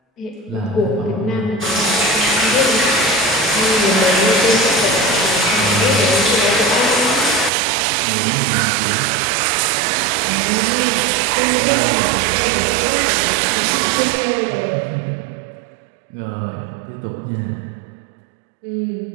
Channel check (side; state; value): left; drops out; at 7.5 s